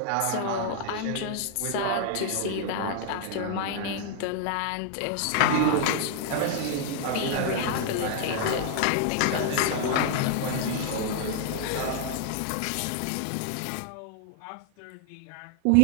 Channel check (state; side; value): different; both; correlation 0.00